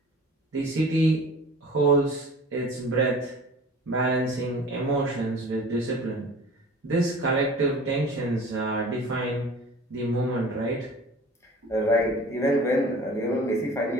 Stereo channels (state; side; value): normal; both; correlation 0.43